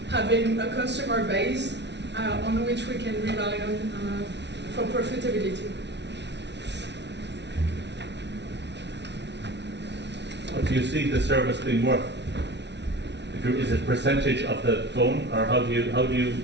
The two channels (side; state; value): left; late; 0.50 ms